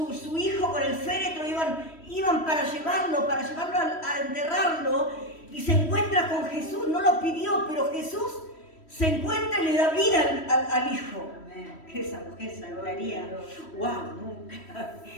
hijo, con el féretro, iban para llevarlo a enterrarlo, y se encuentra con Jesús. No lo pidió, pero Jesús se encuentra y le da vida al hijo. Que esa mujer se lograría. ¡Wow! Nunca.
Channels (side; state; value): right; late; 3.1 ms